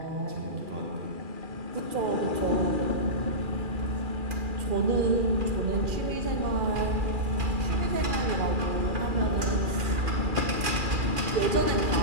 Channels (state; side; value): late; left; 2.4 ms